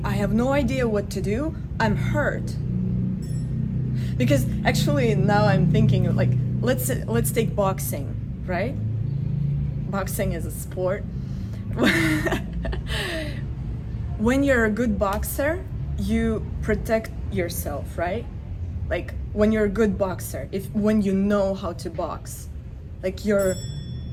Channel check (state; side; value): identical; both; correlation 1.00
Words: have no idea what to do. I'm hurt. Because actually now I'm thinking, like, let's take boxing, right? Boxing is a sport. When you're a good boxer, you protect yourself, right? Like when you're a good boxer, when you know how to box, like